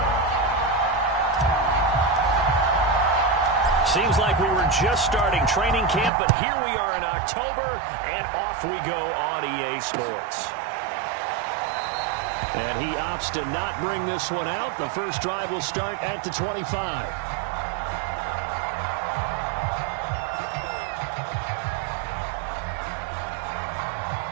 Seems like we were just starting training camp, but here we are in October, and off we go on EA Sports. And he opts to not bring this one out. The first drive will start at the 25.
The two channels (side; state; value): left; drops out; at 6.1 s